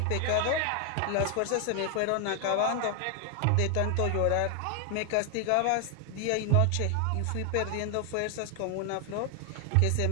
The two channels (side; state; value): both; different; correlation 0.00